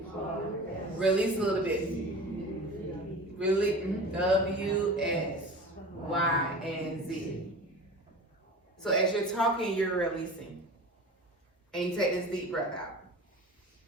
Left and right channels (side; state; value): both; normal; correlation 0.35